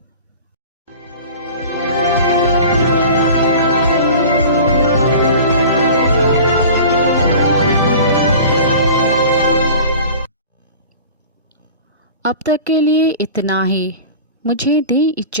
اب تک کے لیے اتنا ہی، مجھے دیں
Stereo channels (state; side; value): inverted; both; correlation -0.39